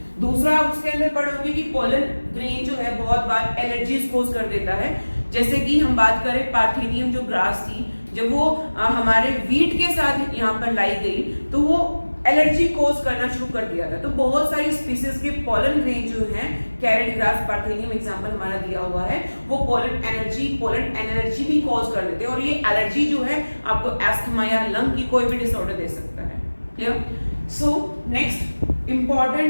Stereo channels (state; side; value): inverted; both; correlation -1.00